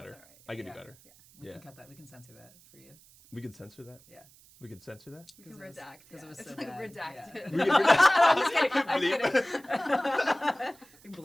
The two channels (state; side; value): noise; right; hiss, 26 dB below the sound